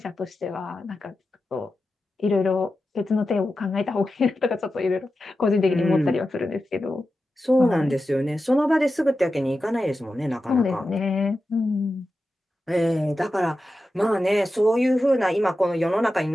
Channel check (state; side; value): normal; both; correlation 0.92